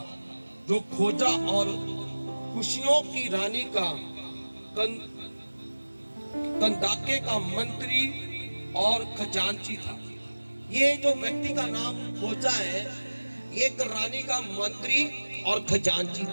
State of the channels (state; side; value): inverted; both; correlation -1.00